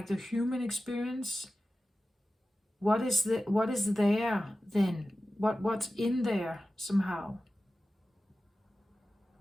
human experience, what is there then? What's in there somehow?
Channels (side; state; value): both; normal; correlation 0.94